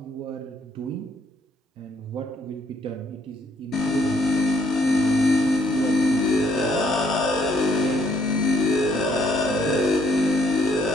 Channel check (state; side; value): normal; both; correlation 0.68